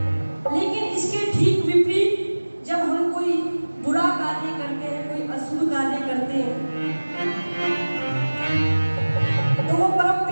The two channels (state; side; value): inverted; both; correlation -1.00